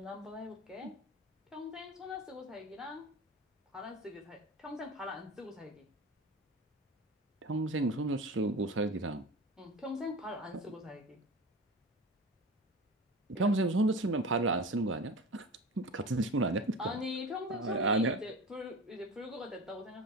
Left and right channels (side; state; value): both; normal; correlation 0.32